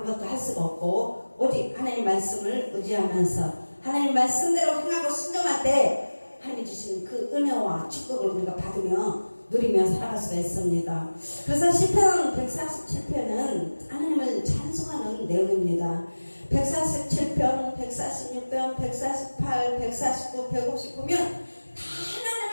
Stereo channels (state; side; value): inverted; both; correlation -1.00